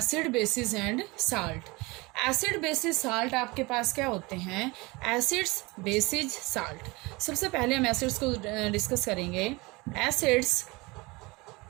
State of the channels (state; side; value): quieter; left; 24.3 dB